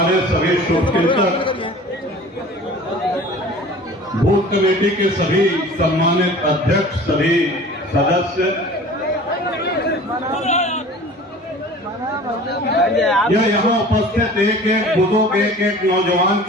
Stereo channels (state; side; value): normal; both; correlation 0.43